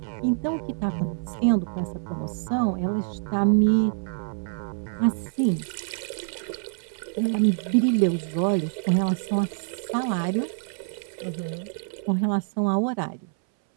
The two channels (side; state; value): left; silent; 61 dB below the other